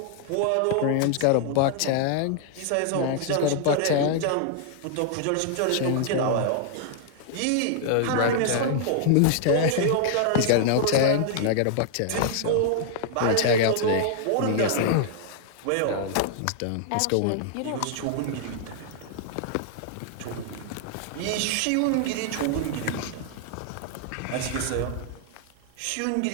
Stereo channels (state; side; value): different; both; correlation -0.01